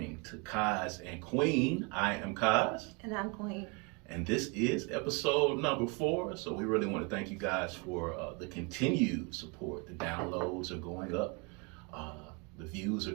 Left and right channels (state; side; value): quieter; left; 30.8 dB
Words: to Kaz and Queen. I am Kaz. And I'm Queen. And this is episode number 4. So we really want to thank you guys for the continued support. The downloads are going up. The views are